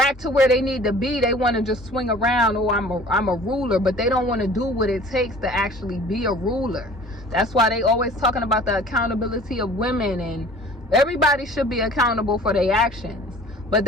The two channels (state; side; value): normal; both; correlation 0.47